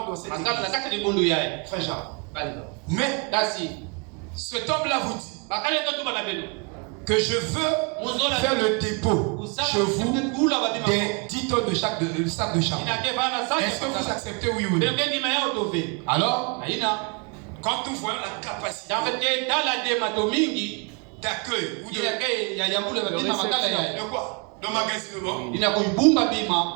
dans cette église. Frère Jean. Mais, cet homme-là vous dit que je veux faire le dépôt chez vous des 10 tonnes de sacs de charbon. Est-ce que vous acceptez oui ou non? Alors, quand nous voyons la capacité d'accueil ou de quoi? D'emmagasinement,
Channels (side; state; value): left; quieter; 33.1 dB